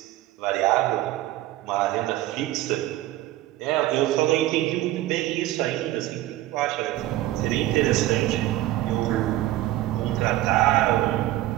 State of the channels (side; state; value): left; quieter; 15.3 dB